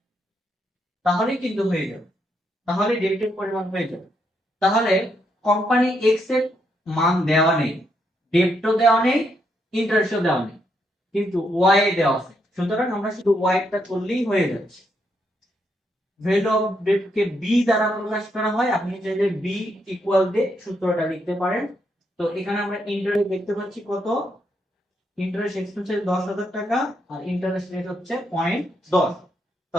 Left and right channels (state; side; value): normal; both; correlation 0.78